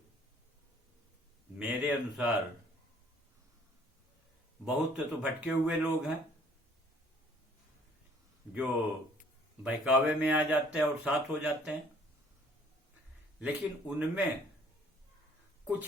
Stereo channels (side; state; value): both; normal; correlation 0.58